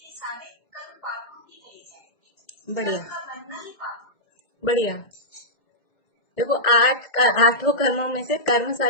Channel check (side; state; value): right; late; 2.0 ms